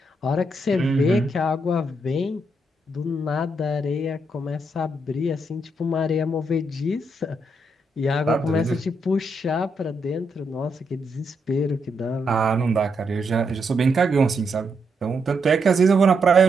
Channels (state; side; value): normal; both; correlation 0.79